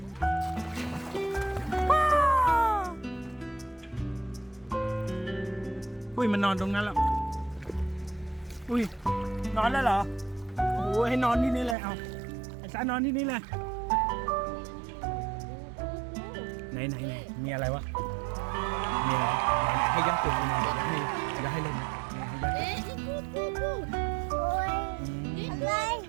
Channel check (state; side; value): drops out; left; at 11.8 s